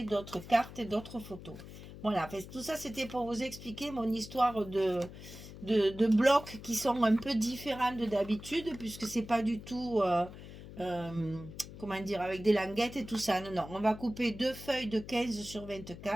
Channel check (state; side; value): noise; left; hum, 14 dB below the sound